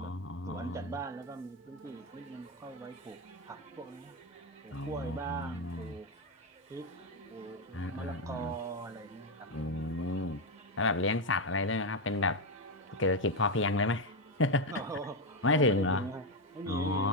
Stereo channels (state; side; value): normal; both; correlation 0.06